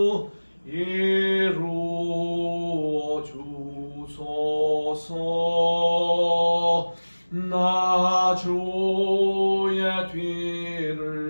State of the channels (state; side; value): inverted; both; correlation -1.00